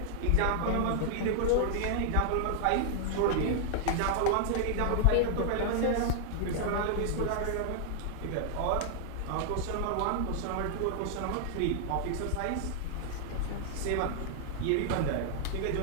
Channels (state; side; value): different; both; correlation -0.01